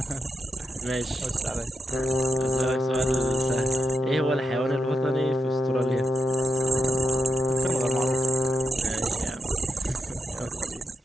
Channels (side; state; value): both; normal; correlation 0.83